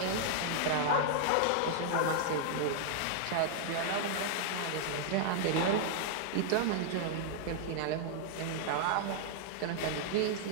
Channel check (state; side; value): different; both; correlation -0.01